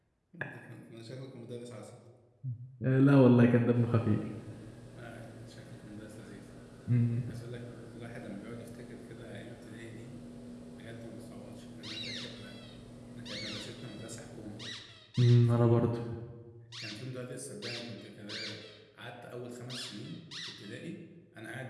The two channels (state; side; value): identical; both; correlation 1.00